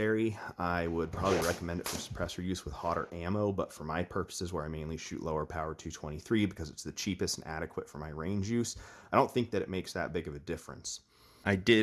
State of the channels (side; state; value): both; identical; correlation 1.00